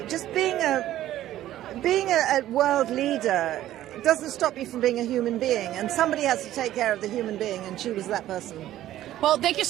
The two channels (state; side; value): quieter; left; 13.4 dB